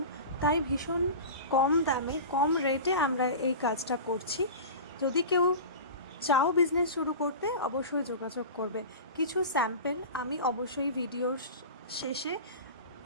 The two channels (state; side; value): inverted; both; correlation -0.32